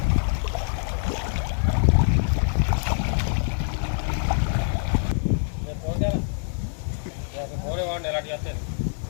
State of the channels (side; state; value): right; silent; digital silence